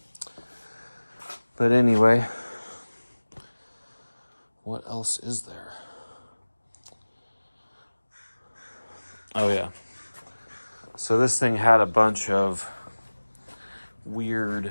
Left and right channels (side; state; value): both; inverted; correlation -1.00